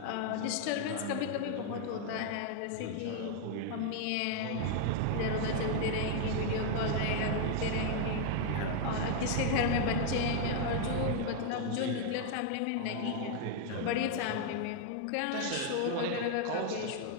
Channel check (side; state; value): both; different; correlation 0.00